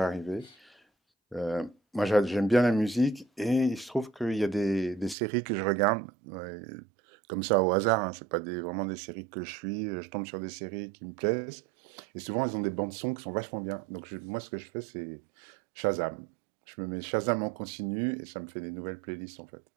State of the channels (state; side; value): drops out; left; at 5.2 s